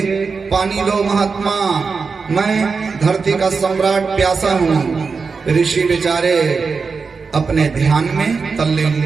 पानी दो महात्मा, मैं धरती का सम्राट प्यासा हूँ। ऋषि बेचारे अपने ध्यान में तल्लीन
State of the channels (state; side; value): quieter; left; 4.9 dB